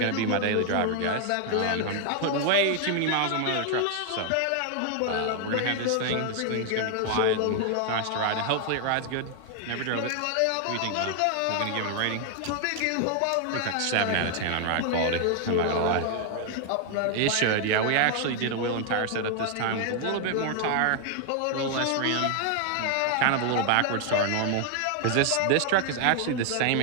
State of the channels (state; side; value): different; both; correlation 0.00